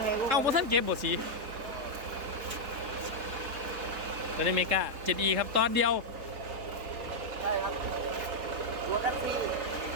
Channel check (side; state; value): left; late; 3.7 ms